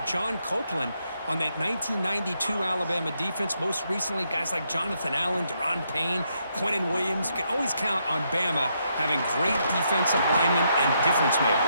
John Copeland on that 1992 Alabama defense. Most recently, guys like Jonathan Allen, Deron Payne, Quentin Williams. You can always count on Bama having great defensive linemen and difference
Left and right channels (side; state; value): both; inverted; correlation -0.77